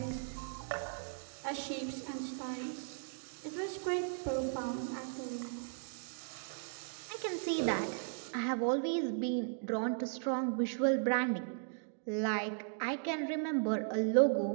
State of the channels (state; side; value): silent; left; digital silence